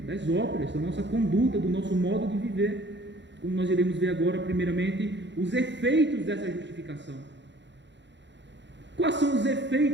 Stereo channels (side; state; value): left; late; 0.52 ms